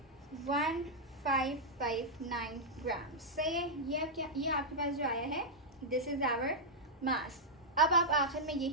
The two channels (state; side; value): normal; both; correlation -0.06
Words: 1559 ग्राम, सही है। ये आपके पास जो आया है, दिस इज़ आवर मास। अब आप आखिर में